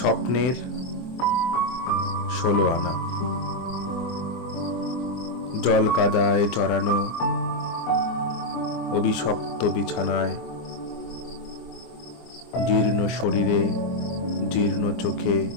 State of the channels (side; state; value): right; late; 24 ms